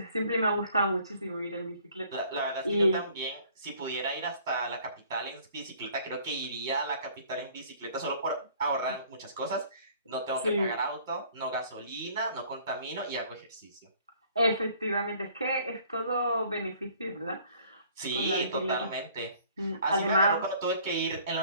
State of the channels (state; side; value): inverted; both; correlation -0.56